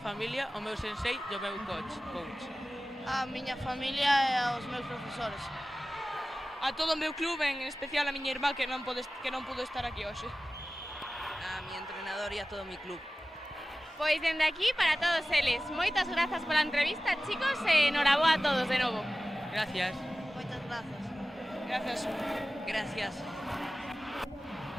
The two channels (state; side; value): normal; both; correlation 0.96